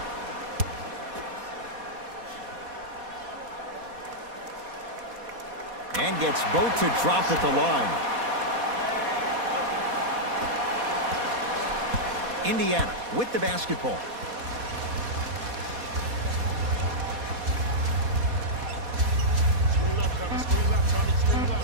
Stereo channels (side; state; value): left; late; 4.2 ms